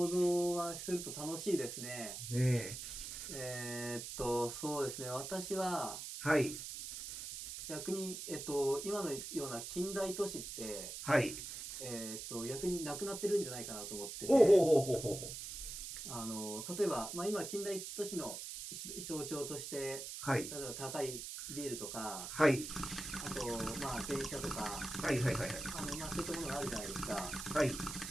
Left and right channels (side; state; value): right; noise; hiss, 7 dB below the sound